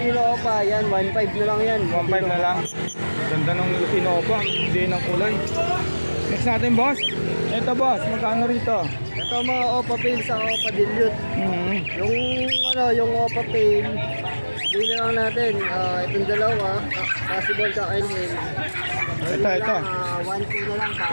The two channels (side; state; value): both; inverted; correlation -1.00